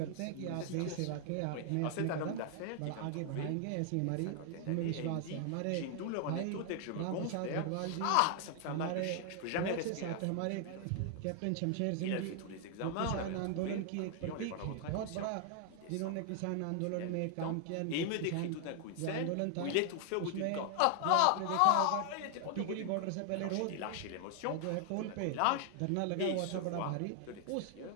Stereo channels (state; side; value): different; both; correlation 0.00